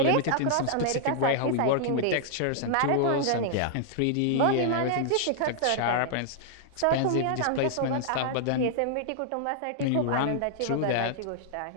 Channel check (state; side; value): different; both; correlation -0.01